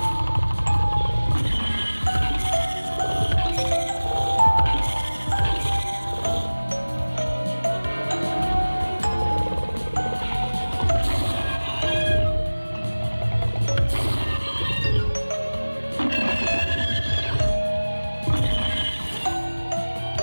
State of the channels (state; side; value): inverted; both; correlation -1.00